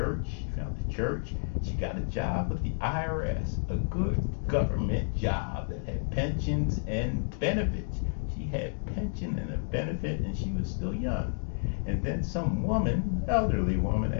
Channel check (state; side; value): silent; right; digital silence